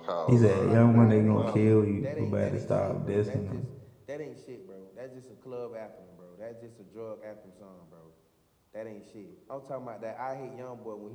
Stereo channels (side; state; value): both; identical; correlation 1.00